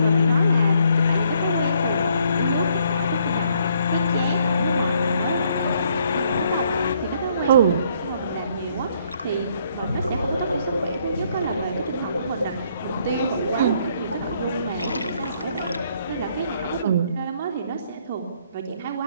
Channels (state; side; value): inverted; both; correlation -0.68